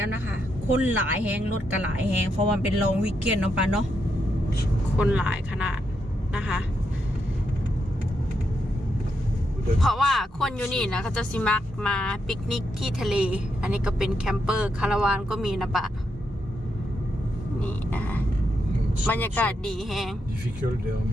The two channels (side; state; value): both; normal; correlation 0.81